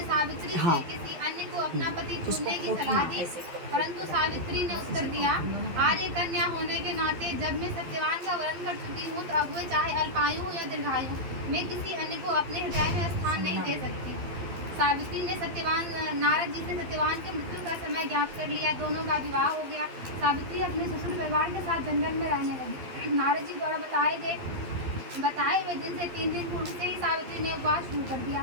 सावित्री से किसी अन्य को अपना पति चुनने की सलाह दी, परंतु सावित्री ने उत्तर दिया, आर्य कन्या होने के नाते जब मैं सत्यवान का वर्ण कर चुकी हूँ तो अब वे चाहे अल्पायु हो या दीर्घायु, मैं किसी अन्य को अपने हृदय में स्थान नहीं दे सकती। सावित्री ने नारद जी से सत्यवान के मृत्यु का समय ज्ञात कर लिया। दोनों का विवाह हो गया। सावित्री अपने ससुर परिवार के साथ जंगल में रहने लगी। नारद जी द्वारा बताए हुए दिन से 3 दिन पूर्व से ही सावित्री ने उपवास शुरू कर दिया।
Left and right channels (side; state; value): left; late; 12 ms